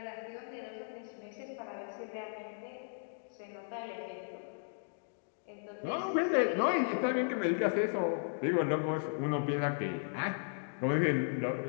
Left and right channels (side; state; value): right; silent; digital silence